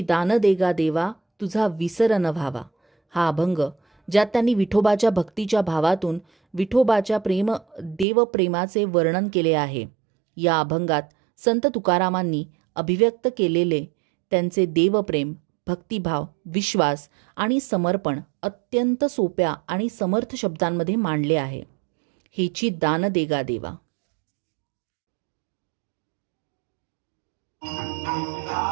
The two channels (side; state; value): left; drops out; at 8.1 s